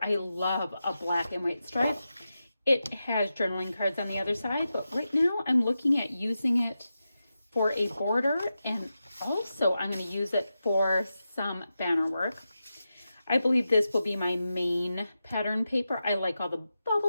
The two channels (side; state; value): both; inverted; correlation -0.90